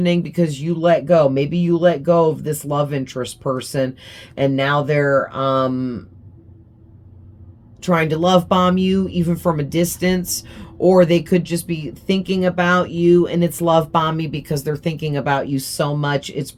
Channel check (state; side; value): identical; both; correlation 1.00